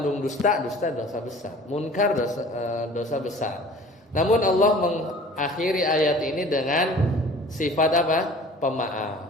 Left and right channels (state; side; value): normal; both; correlation 0.46